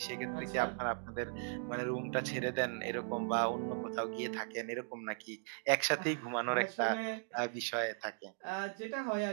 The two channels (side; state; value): left; silent; digital silence